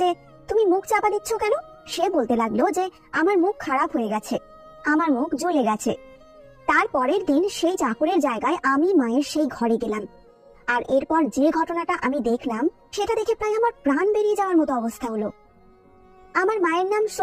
যে তুমি মুখ চাপা দিচ্ছ কেন? সে বলতে লাগলো যে আমার মুখ খারাপ হয়ে গেছে, আমার মুখ জ্বলে গেছে। তার পরের দিন সেই চাকরের জায়গায় আমি মায়ের সেই ঘরে গেলাম। আর এরপর যে ঘটনাটা আমি দেখলাম, সেটা দেখে প্রায় আমার প্রাণ বেরিয়ে যাওয়ার মতো অবস্থা হলো। আমার মায়ের নাম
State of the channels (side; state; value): both; identical; correlation 1.00